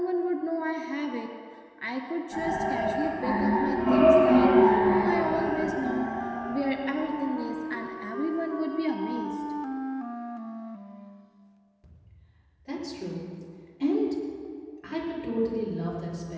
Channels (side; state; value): both; identical; correlation 1.00